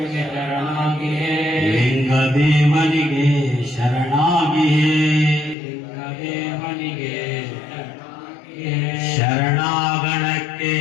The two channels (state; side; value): drops out; right; at 5.6 s